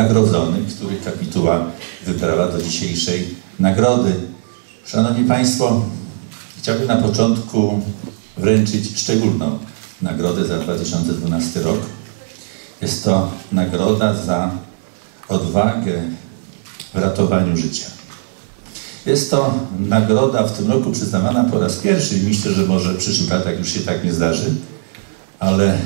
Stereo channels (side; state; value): left; silent; 67 dB below the other